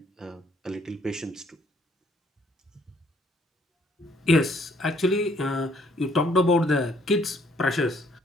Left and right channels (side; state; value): both; normal; correlation 0.64